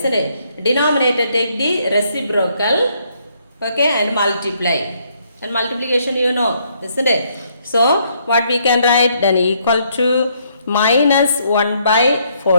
it? Denominator take the reciprocal, okay, and multiply. And multiplication you know, isn't it? So what we can write? Then equal to minus 1 by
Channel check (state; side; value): inverted; both; correlation -0.71